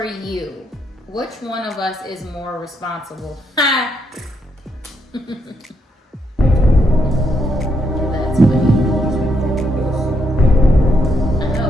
you? Which one of us is more responsible? Ha! That's funny. I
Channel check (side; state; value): both; normal; correlation 0.78